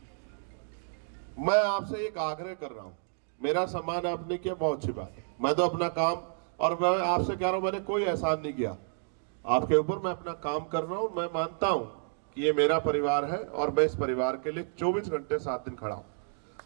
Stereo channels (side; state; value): left; silent; digital silence